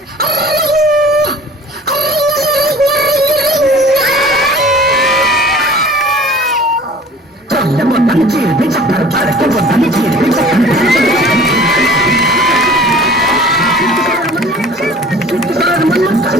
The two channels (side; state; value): both; normal; correlation 0.46